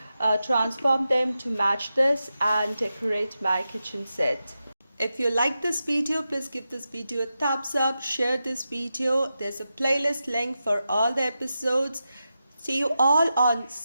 transform them to match this and decorate my kitchen set. If you like this video, please give this video a thumbs up, share this video. There's a playlist link for all the episodes. See you all on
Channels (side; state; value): both; inverted; correlation -0.90